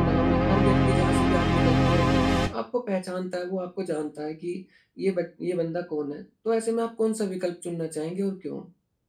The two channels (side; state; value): both; identical; correlation 1.00